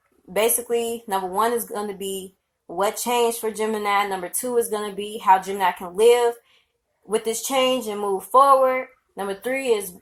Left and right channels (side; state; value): both; identical; correlation 1.00